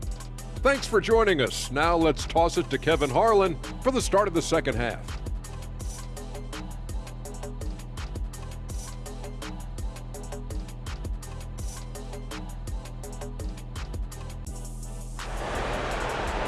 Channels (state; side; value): identical; both; correlation 1.00